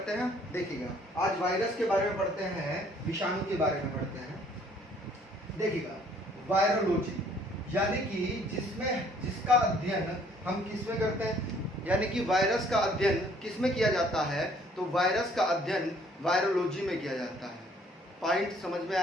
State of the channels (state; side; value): normal; both; correlation 0.61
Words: हैं। देखिएगा, आज वायरस के बारे में पढ़ते हैं, विषाणु के बारे में पढ़ते हैं। देखिएगा, वायरोलॉजी यानी कि जिसका अध्ययन हम किसमें करते हैं, यानी कि वायरस का अध्ययन किसमें किया जाता है, तो वायरस का अध्ययन वायरोलॉजी में किया जाता है। पॉइंट समझ में